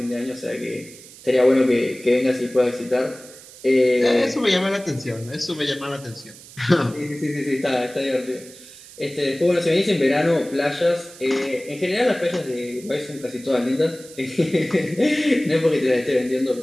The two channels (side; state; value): right; noise; hiss, 19 dB below the sound